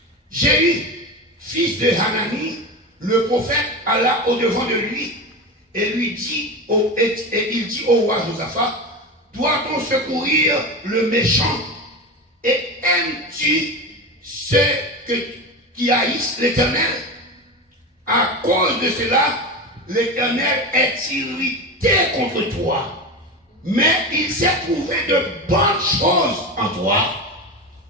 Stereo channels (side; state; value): both; normal; correlation 0.24